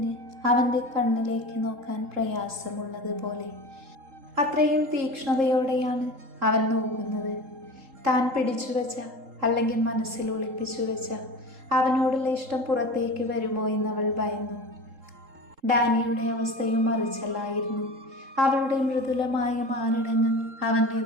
അവൻ്റെ കണ്ണിലേക്ക് നോക്കാൻ പ്രയാസമുള്ളതുപോലെ. അത്രയും തീക്ഷ്ണതയോടെയാണ് അവൻ നോക്കുന്നത്. താൻ പിടിച്ചു വെച്ച അല്ലെങ്കിൽ മനസ്സിൽ ഒളിപ്പിച്ചു വെച്ച അവനോടുള്ള ഇഷ്ടം പുറത്തേക്ക് വരുമോ എന്നവൾ ഭയന്നു. ഡാനിയുടെ അവസ്ഥയും മറിച്ചല്ലായിരുന്നു. അവളുടെ മൃദുലമായ മാറിടങ്ങൾ അവൻ്റെ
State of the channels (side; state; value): left; late; 3.7 ms